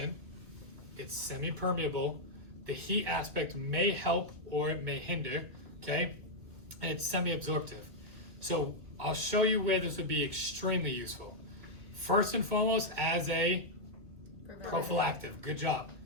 it's semi-permeable, the heat aspect may help or it may hinder, okay? And it's semi-absorptive. So I'll show you where this would be extremely useful. First and foremost, as a prophylactic, good job,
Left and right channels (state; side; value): late; left; 2.3 ms